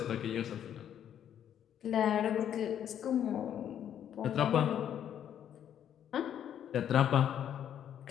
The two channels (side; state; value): right; quieter; 9.8 dB